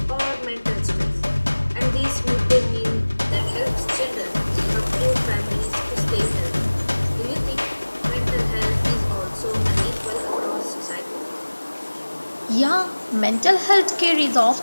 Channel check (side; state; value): both; inverted; correlation -1.00